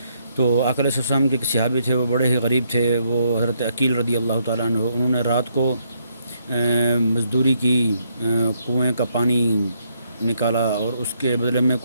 تو آقا علیہ السلام کے ایک صحابی تھے، وہ بڑے ہی غریب تھے، وہ حضرت عقیل رضی اللہ تعالیٰ عنہ، انہوں نے رات کو مزدوری کی، کنویں کا پانی نکالا اور اس کے بدلے میں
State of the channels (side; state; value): both; inverted; correlation -0.74